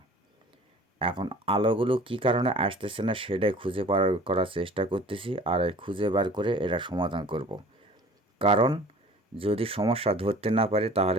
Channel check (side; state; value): both; normal; correlation 0.46